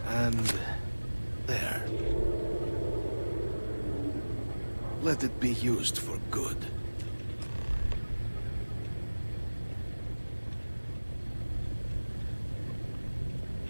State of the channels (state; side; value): inverted; both; correlation -1.00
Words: And there. Let it be used for good.